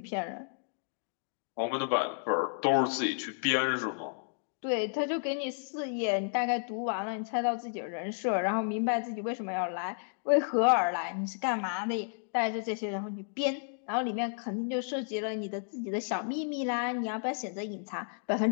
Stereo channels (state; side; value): silent; right; digital silence